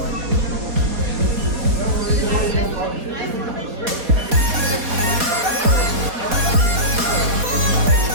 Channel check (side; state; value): left; late; 4.2 ms